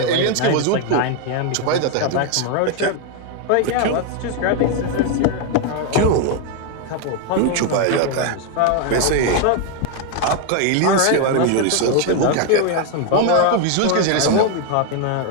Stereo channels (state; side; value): different; both; correlation 0.01